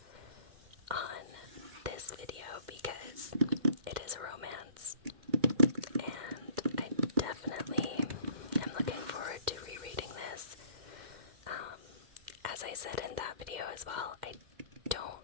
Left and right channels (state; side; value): late; left; 2.1 ms